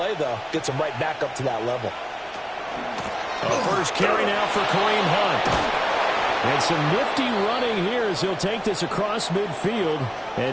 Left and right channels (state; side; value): identical; both; correlation 1.00